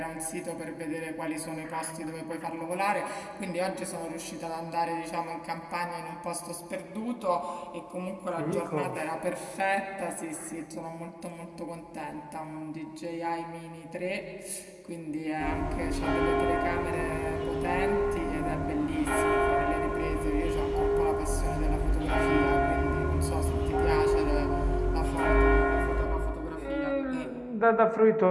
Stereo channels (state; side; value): identical; both; correlation 1.00